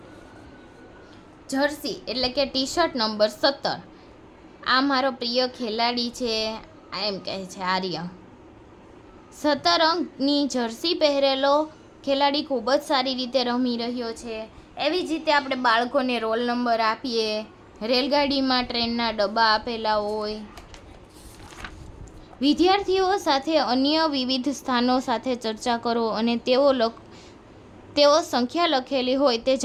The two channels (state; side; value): identical; both; correlation 1.00